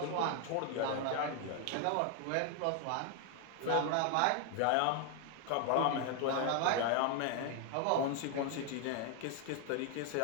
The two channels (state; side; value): different; both; correlation 0.00